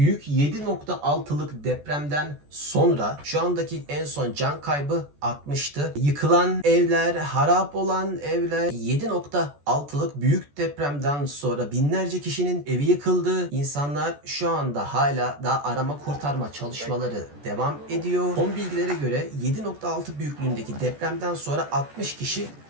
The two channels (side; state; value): left; late; 14 ms